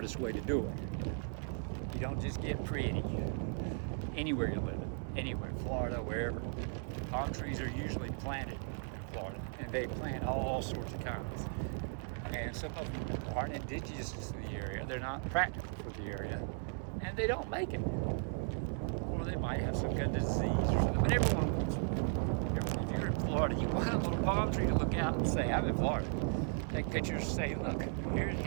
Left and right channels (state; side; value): silent; left; 54 dB below the other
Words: way to do it. You don't just get pretty anywhere you live. Anywhere, Florida, wherever. Palm trees are usually planted in Florida, and they plant all sorts of kinds. And some of them aren't indigenous to the area, they're not practical for the area, and they don't make it. Or they might have some kind of disease or something, but everyone wants it. If you're in Florida, you want a little palm tree to look out and say, I'm in Florida. Take pictures, say, look,